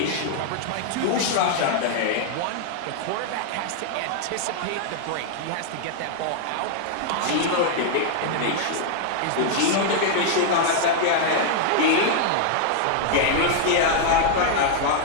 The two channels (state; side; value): different; both; correlation -0.01